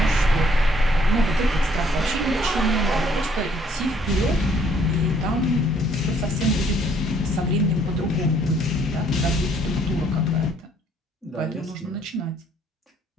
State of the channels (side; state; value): both; normal; correlation 0.65